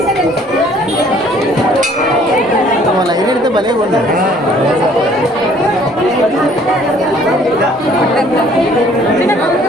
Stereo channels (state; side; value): normal; both; correlation 0.58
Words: లైన్ ఎడితే భలే ఉంది.